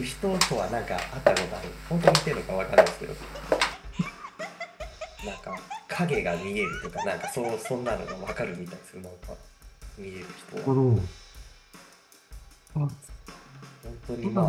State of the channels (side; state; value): both; identical; correlation 1.00